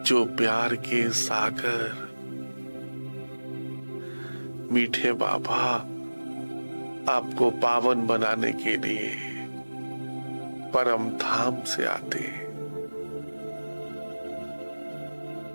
जो प्यार के सागर। मीठे बाबा, आपको पावन बनाने के लिए परम धाम से आते हैं।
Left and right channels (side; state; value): both; inverted; correlation -1.00